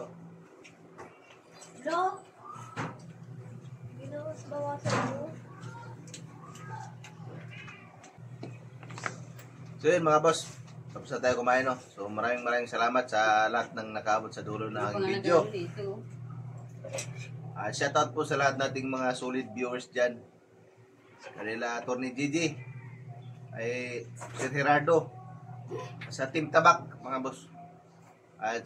Hello? Ginawas bawasan mo? So yun mga boss, tapos na tayo kumain no. So maraming salamat sa lahat ng nakaabot sa dulo ng aking video. Dito. Shoutout po sa lahat nating mga solid viewers dyan. Kanila Atty. Gigi, ay Sir Gerardo, sa Team Tabak mga boss. At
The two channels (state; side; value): identical; both; correlation 1.00